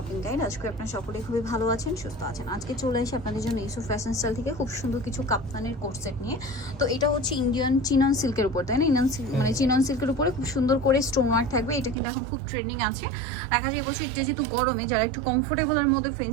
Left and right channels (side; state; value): left; drops out; at 12.0 s